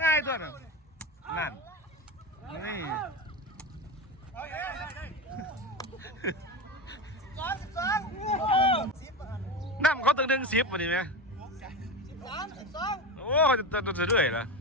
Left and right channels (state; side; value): normal; both; correlation 0.22